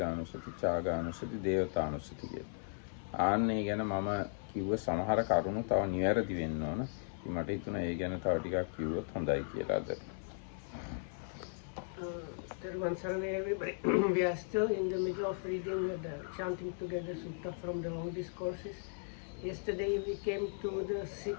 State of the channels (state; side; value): silent; right; 53 dB below the other